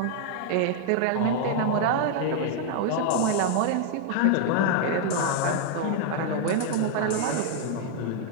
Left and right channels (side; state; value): both; different; correlation 0.00